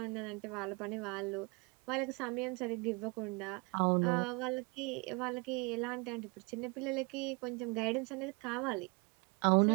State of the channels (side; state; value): left; quieter; 30.3 dB